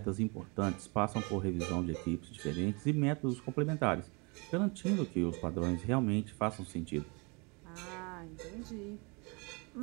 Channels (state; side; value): quieter; left; 30.4 dB